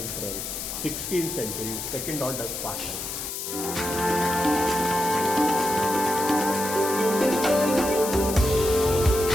16th century, second order part है।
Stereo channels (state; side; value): noise; left; hiss, 6 dB below the sound